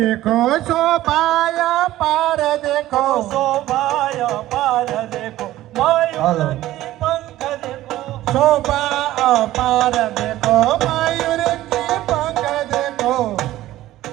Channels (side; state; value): left; quieter; 15.0 dB